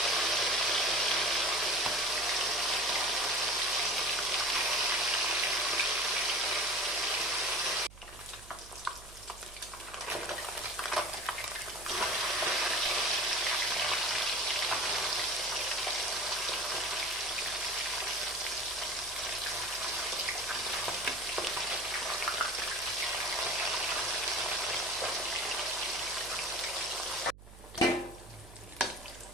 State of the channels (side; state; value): right; noise; hum, 19 dB below the sound